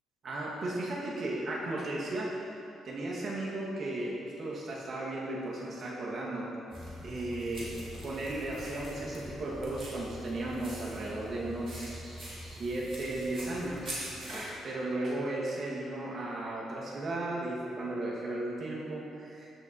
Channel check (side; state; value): both; normal; correlation 0.80